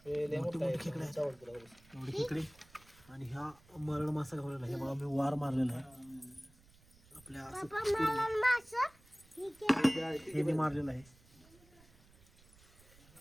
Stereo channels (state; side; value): noise; right; rumble, 26 dB below the sound